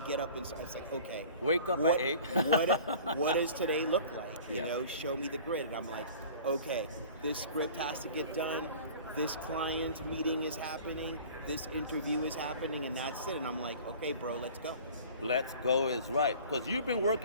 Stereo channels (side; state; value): both; inverted; correlation -0.44